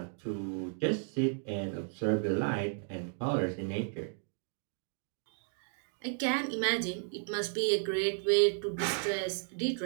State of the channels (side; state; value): left; silent; 55 dB below the other